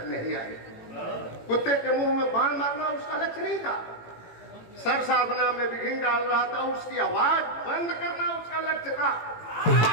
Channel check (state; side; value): late; right; 18 ms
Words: नहीं आई। कुत्ते के मुंह में बाण मारना उसका लक्ष्य नहीं था, सर साधना में विघ्न डाल रहा था, उसकी आवाज बंद करना उसका लक्ष्य था